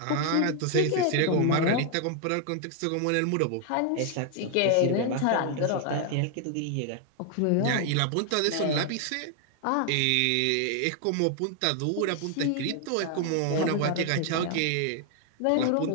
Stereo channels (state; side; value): different; both; correlation 0.00